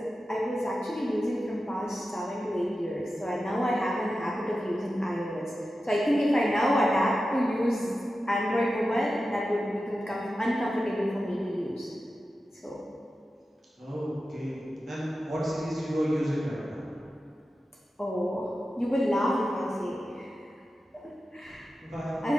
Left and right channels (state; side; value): normal; both; correlation 0.92